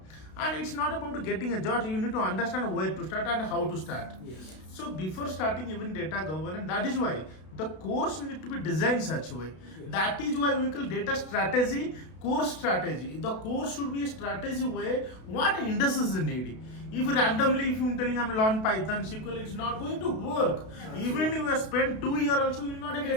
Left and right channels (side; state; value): right; late; 32 ms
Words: And it's not about getting a job. You need to understand where to start and how to start. Yes. So before starting even data governance, that is why the course need to be designed such a way. Yes. That is why we call data strategy, course strategy. The course should be a strategy way what industries need. If randomly, if you're telling I'm learn Python, SQL, it's not going to work. Even if you spend 2 years also, you will not